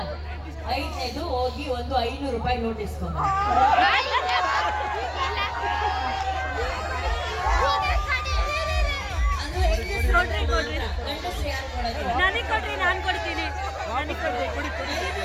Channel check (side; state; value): both; identical; correlation 1.00